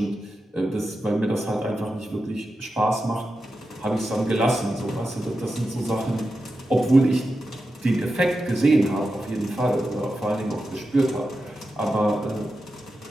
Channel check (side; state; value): both; normal; correlation 0.90